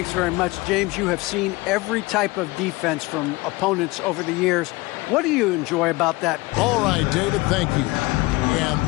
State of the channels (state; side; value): quieter; right; 22.2 dB